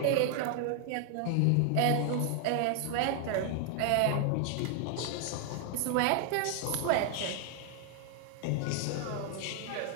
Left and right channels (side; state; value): both; different; correlation 0.00